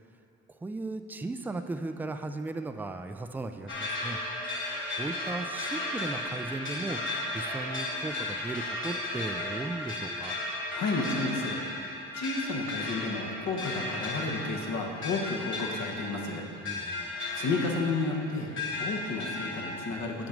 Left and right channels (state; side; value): normal; both; correlation 0.32